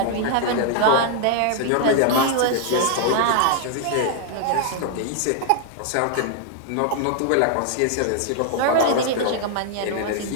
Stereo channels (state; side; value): different; both; correlation 0.00